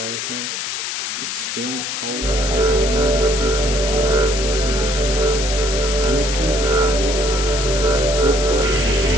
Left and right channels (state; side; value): noise; left; hiss, 4 dB below the sound